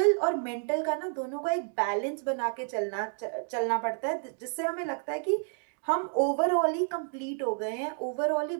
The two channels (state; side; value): silent; left; 58 dB below the other